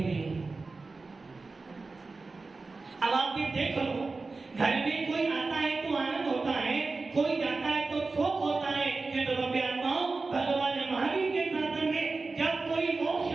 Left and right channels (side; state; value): left; quieter; 3.8 dB